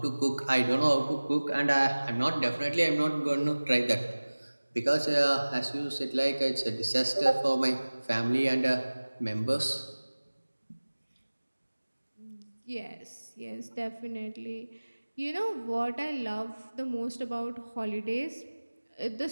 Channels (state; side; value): inverted; both; correlation -1.00